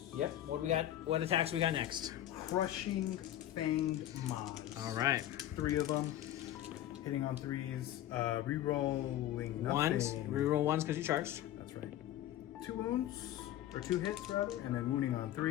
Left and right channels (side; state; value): right; quieter; 12.7 dB